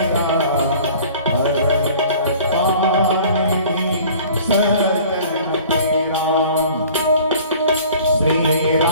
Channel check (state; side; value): inverted; both; correlation -0.48